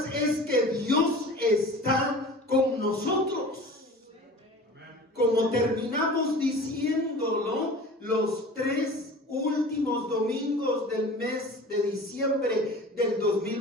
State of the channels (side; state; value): both; normal; correlation 0.40